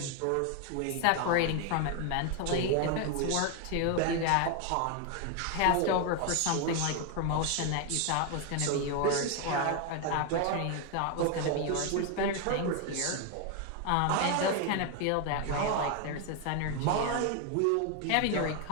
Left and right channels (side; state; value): both; different; correlation 0.01